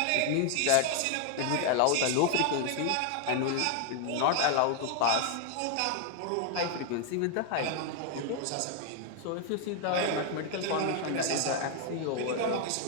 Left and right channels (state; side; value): different; both; correlation 0.00